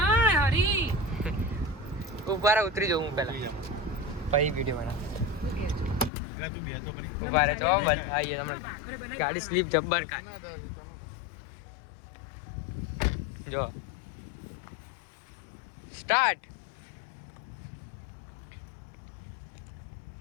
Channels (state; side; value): drops out; right; at 6.1 s